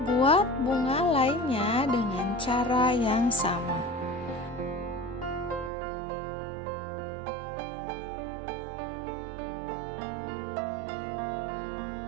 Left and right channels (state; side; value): drops out; left; at 5.7 s